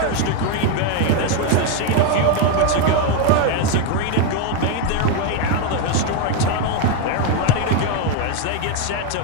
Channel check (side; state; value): both; different; correlation 0.02